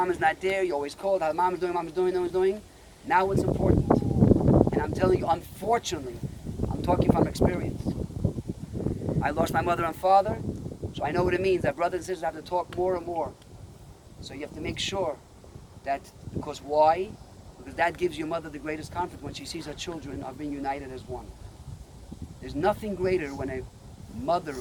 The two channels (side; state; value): both; identical; correlation 1.00